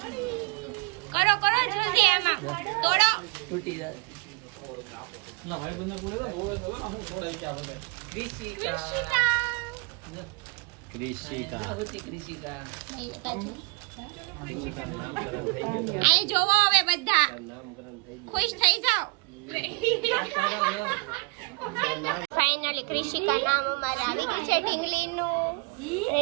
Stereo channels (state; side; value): quieter; left; 29.3 dB